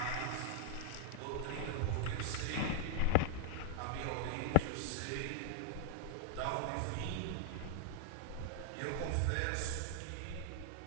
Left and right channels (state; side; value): different; both; correlation -0.01